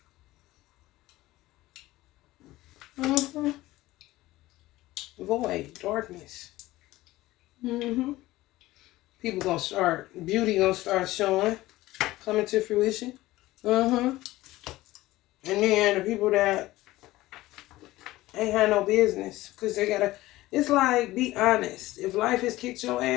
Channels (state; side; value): quieter; right; 17.4 dB